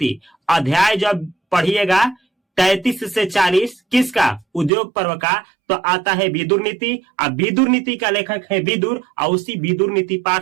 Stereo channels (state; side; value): drops out; left; at 4.7 s